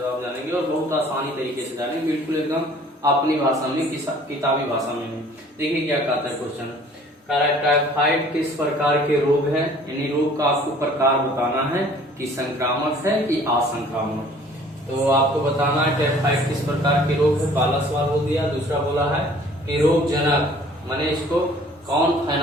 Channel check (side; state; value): both; normal; correlation 0.53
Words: जानेंगे और बहुत आसानी तरीके से जानेंगे, बिल्कुल एकदम अपनी भाषा में, किताबी भाषा में। देखिए क्या कहता है क्वेश्चन। टाइफाइड किस प्रकार के रोग है, यानी रोग का आपको प्रकार बताना है कि संक्रामक है कि असंक्रामक। तो आपको बताना है टाइफाइड किस प्रकार के रोग है, पहला सवाल हो दिया। दूसरा बोला है कि रोग जनक, माने इसको कौन